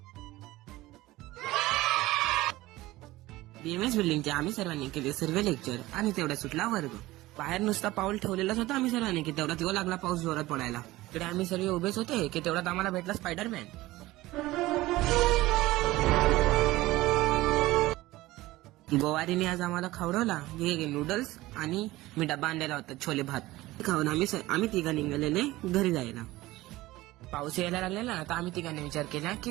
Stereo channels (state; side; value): quieter; left; 18.1 dB